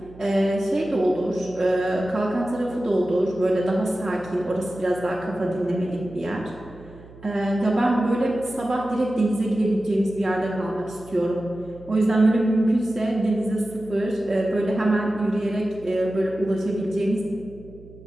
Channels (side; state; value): right; noise; hum, 20 dB below the sound